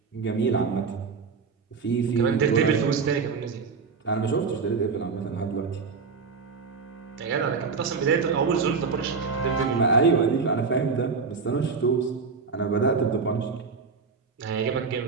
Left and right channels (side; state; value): left; quieter; 5.0 dB